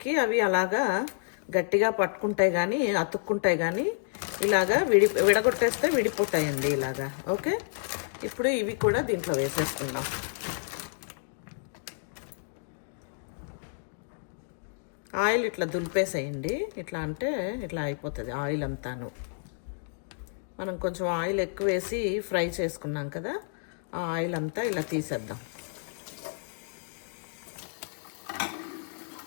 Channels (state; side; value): silent; right; digital silence